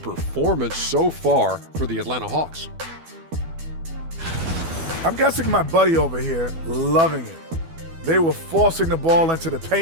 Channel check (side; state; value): left; late; 12 ms